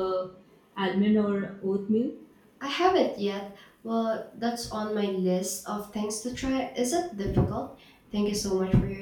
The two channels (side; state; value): both; identical; correlation 1.00